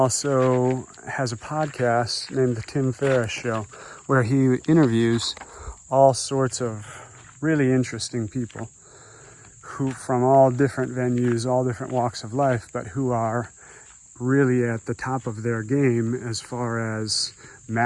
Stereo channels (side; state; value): both; identical; correlation 1.00